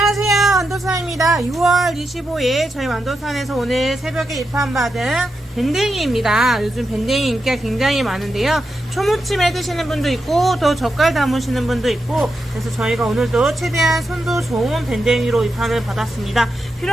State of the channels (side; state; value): both; normal; correlation 0.86